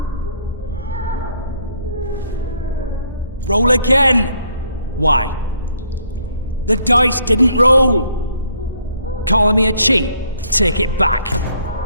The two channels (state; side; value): inverted; both; correlation -0.66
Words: Roll again! Why? The dice didn't roll! Calling me a cheat? Take it back.